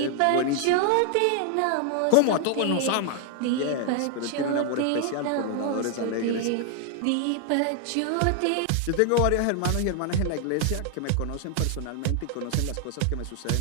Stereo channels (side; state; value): both; different; correlation 0.00